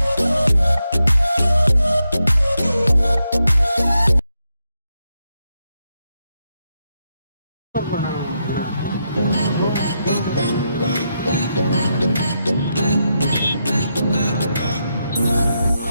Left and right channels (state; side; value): inverted; both; correlation -0.84